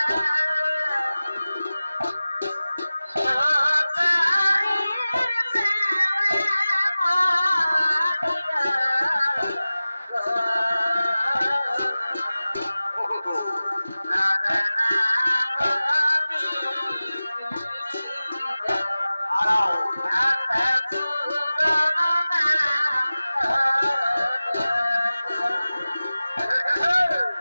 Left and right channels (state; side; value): inverted; both; correlation -0.96